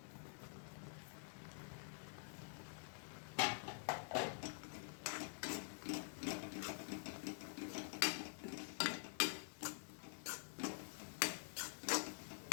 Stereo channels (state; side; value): silent; right; digital silence